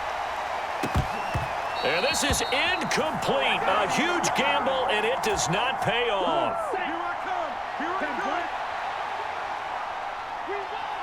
And this is incomplete. A huge gamble, and it does not pay off.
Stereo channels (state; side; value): identical; both; correlation 1.00